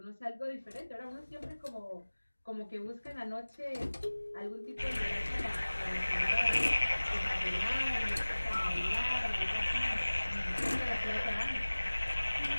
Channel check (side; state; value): both; inverted; correlation -1.00